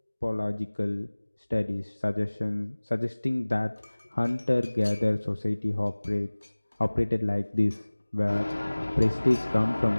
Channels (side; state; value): both; inverted; correlation -1.00